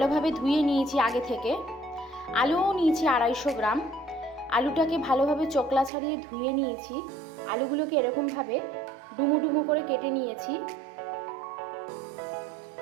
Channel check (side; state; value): left; drops out; at 5.9 s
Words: ধুয়ে নিয়েছি আগে থেকে। আলুও নিয়েছি 250 গ্রাম। আলুটাকে ভালোভাবে চোকলা ছাড়িয়ে ধুয়ে নিয়েছি। আলুগুলোকে এরকমভাবে ডুমো ডুমো করে কেটে নিয়েছি।